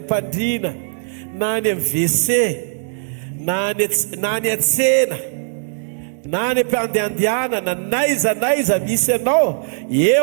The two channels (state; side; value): silent; left; digital silence